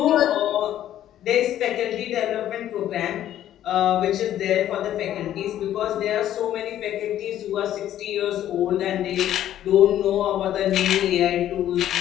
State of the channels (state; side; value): quieter; right; 11.9 dB